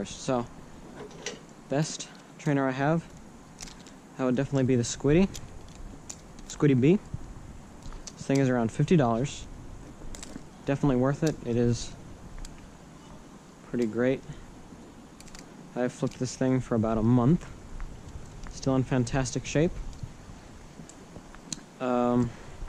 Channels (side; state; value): both; identical; correlation 1.00